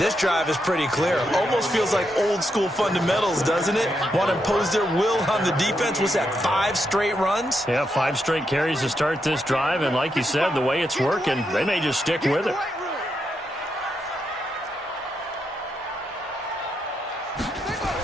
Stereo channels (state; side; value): normal; both; correlation 0.82